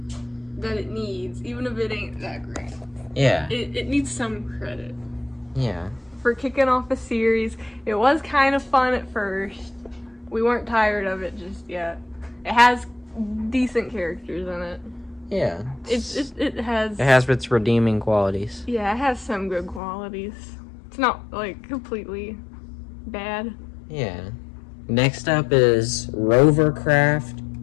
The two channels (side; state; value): right; drops out; at 19.8 s